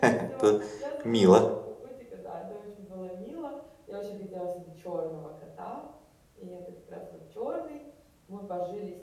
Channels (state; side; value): identical; both; correlation 1.00